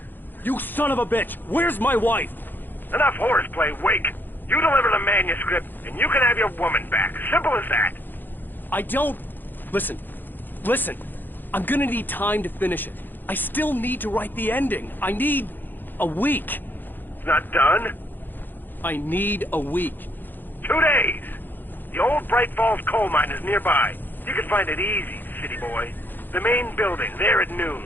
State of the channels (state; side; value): late; right; 0.090 ms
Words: You son of a bitch! Where's my wife? Enough horseplay, Wake. You deliver the manuscript, and you can have your woman back. Simple as that. I don't... Listen. Listen. I'm gonna need time to finish it. I still need to write the ending. I need... a week. It's not done? I need a week. 2 days. The old Bright Falls coal mine is nearby. You can find it easy, city boy. The main building, there at noon.